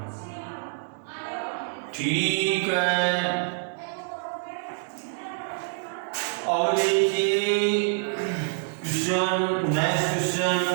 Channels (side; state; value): left; silent; digital silence